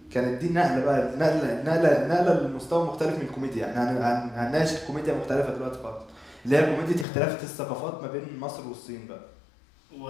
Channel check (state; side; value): drops out; right; at 7.1 s